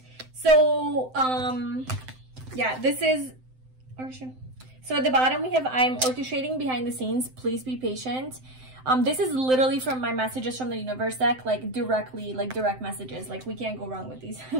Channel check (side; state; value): left; late; 7.8 ms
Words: So, yeah, this is, so at the bottom we have, I'm orchestrating behind the scenes, please be patient. This is literally from my messages from the universe deck, like directly, like direct messages, like we can't go wrong with these.